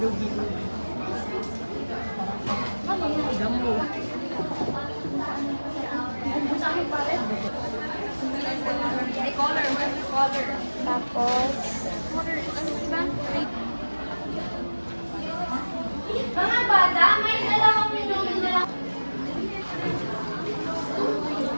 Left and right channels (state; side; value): inverted; both; correlation -1.00